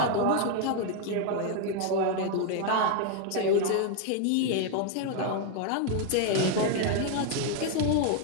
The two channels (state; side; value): different; both; correlation 0.00